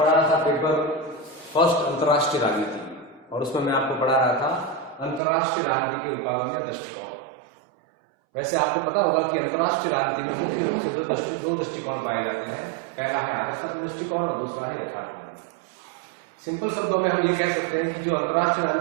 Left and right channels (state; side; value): drops out; left; at 5.2 s